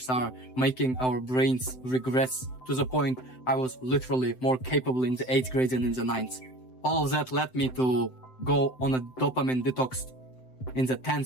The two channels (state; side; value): late; right; 7.8 ms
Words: are making our brains regress to the point I was literally more capable in the 8th grade than in the 9th. All of that led me to go on a dopamine detox in the